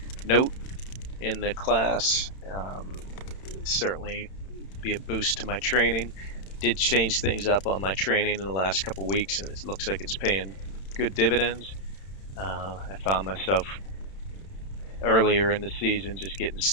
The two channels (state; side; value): late; right; 31 ms